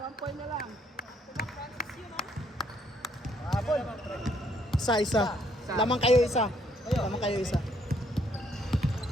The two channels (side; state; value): both; normal; correlation 0.69